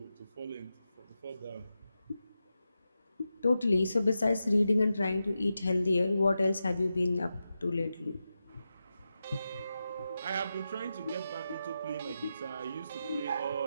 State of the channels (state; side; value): inverted; both; correlation -0.90